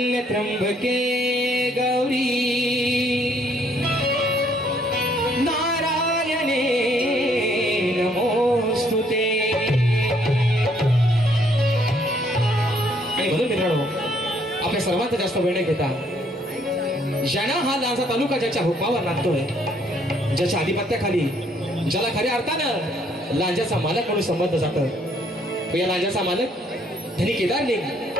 त्र्यंबके गौरी नारायणे नमोस्तुते. आणि म्हणून मित्रांनो, आपल्या सर्वांचा जास्त वेळ न घेता ज्यानं हा लांजा तालुका ज्याच्या हुकमावर नांदतोय, ज्याच्या आधिपत्याखाली, ज्याला खऱ्या अर्थानं लांजाचा मालक म्हणून संबंध जातं, तो या लांजाचा मालक धनी केदारलिंग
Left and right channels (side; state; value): both; normal; correlation 0.67